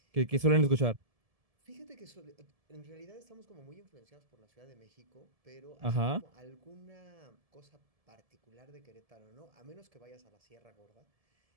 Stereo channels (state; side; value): late; left; 1.7 ms